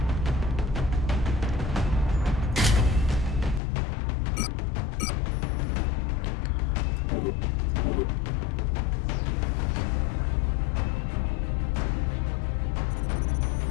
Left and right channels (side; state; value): right; drops out; at 3.6 s